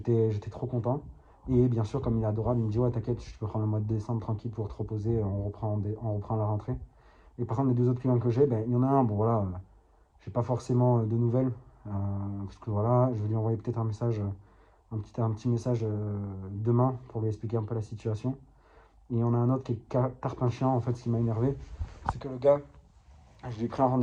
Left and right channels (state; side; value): identical; both; correlation 1.00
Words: trop content. Et bien sûr, comme il est adorable, il me dit ouais, t'inquiète, je peux prendre le mois de décembre tranquille pour te reposer, on reprend la rentrée. Et par contre, les deux autres clients que j'ai, il y en a un, bon voilà, j'ai pas forcément de nouvelles. Parce que voilà, je vais lui envoyer peut-être un message, un petit message demain pour lui expliquer un peu la situation. Et il y en a un autre qui est tarpin en fait, ce qui m'a énervé. C'est que le gars, je lui ai pris un